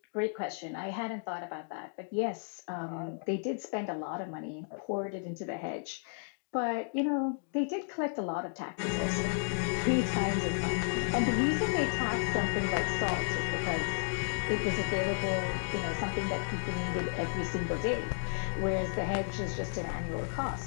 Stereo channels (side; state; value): right; silent; digital silence